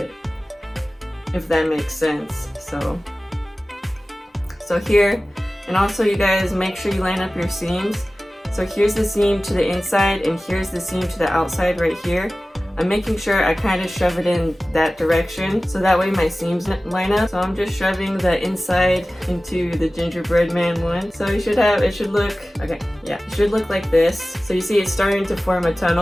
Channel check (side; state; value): both; normal; correlation 0.96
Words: if that makes sense. So here, and also you guys make sure you line up your seams. So here's the seam to the inside, and here's the seam to the outside right here. I'm making sure I kind of shove it in that direction, so that way my seams line up. So I'm just shoving the inside into the gingerbread man one. So it should look like this. So you see it's starting to form a